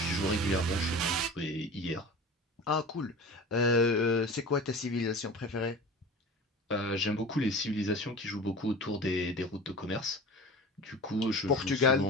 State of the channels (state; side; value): normal; both; correlation 0.35